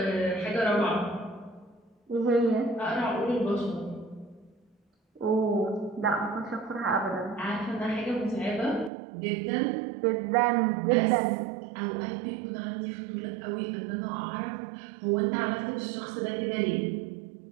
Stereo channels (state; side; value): drops out; left; at 8.9 s